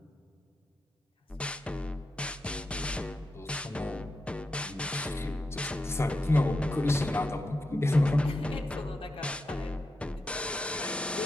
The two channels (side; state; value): both; normal; correlation 0.87